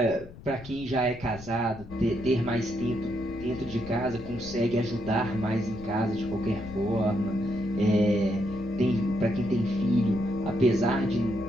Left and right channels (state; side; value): noise; left; rumble, 16 dB below the sound